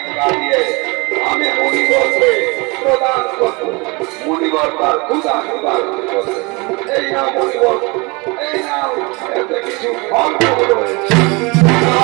দিয়ে আমি মুনিবরকে প্রদান করব। মুনিবর তার ক্ষুধা নিবারণ করবে। এই নাও মুনিবর, এই নাও, এতে কিছু ফলমূল রয়েছে।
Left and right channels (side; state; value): left; quieter; 27.3 dB